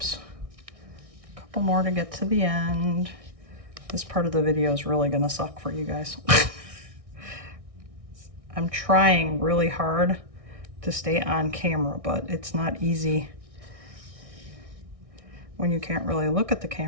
to get to the end. This part of the video is really gonna suck for you guys. I'm trying really hard to stay on camera, but it's not easy when you can't really look at the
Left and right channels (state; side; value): late; left; 1.6 ms